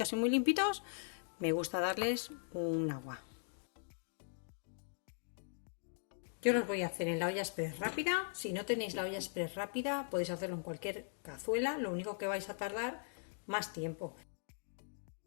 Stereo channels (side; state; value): right; silent; digital silence